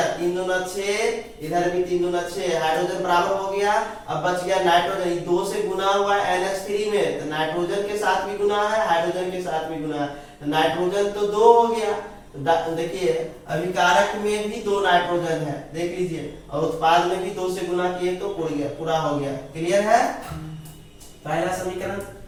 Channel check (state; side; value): identical; both; correlation 1.00